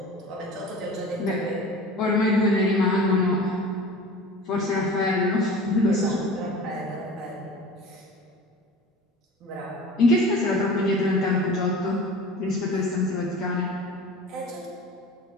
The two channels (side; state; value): both; normal; correlation 0.39